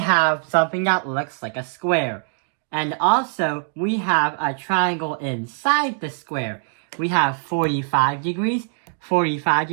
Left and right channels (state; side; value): silent; left; digital silence